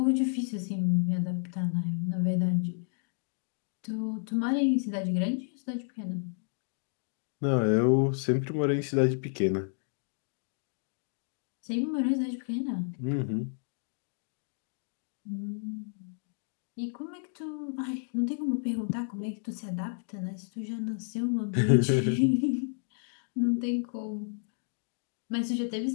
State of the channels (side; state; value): right; silent; 57 dB below the other